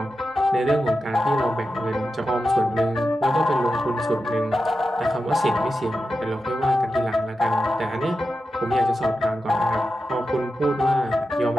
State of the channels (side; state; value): both; normal; correlation 0.90